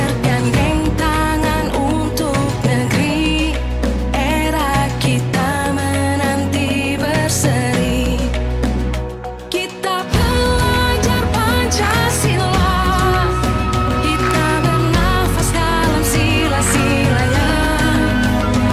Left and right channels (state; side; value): identical; both; correlation 1.00